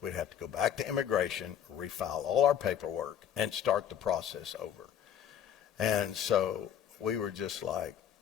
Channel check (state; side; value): quieter; right; 9.3 dB